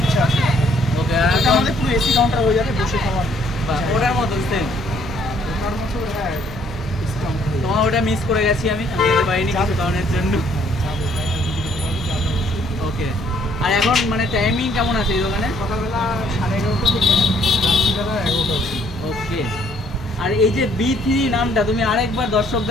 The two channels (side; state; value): both; normal; correlation 0.64